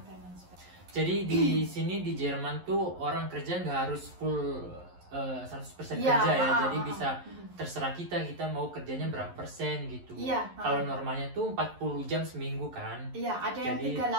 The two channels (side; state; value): left; late; 11 ms